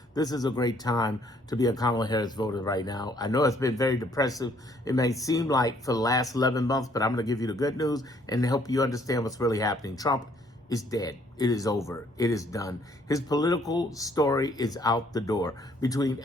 This is a great time to be a Kamala Harris voter right now. I know it's been very depressive. It may seem like for the last 11 months, but I'm going to give you the good news and help you understand what's really happening. Trump is dead. It is over. It is done. His political story is out the door. Between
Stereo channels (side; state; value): both; normal; correlation 0.64